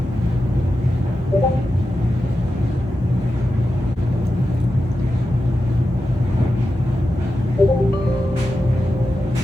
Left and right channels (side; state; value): both; normal; correlation 0.91